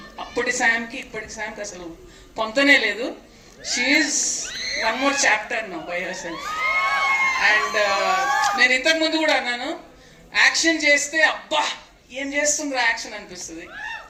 అప్పటి శామ్కి ఇప్పటి శామ్కి అసలు పొంతనే లేదు. She's one more chapter now by her self. And నేను ఇంతకు ముందు కూడా అన్నాను, యాక్షన్ చేస్తే అబ్బా ఏం చేస్తుందిరా యాక్షన్ అనిపిస్తుంది,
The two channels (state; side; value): identical; both; correlation 1.00